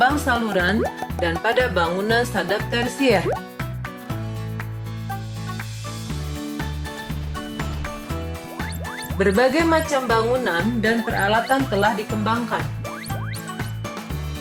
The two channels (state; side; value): identical; both; correlation 1.00